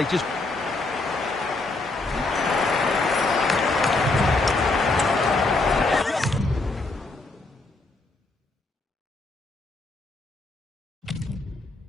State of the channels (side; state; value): right; quieter; 3.3 dB